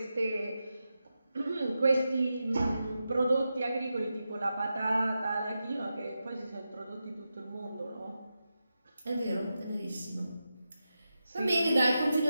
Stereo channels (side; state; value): both; inverted; correlation -0.90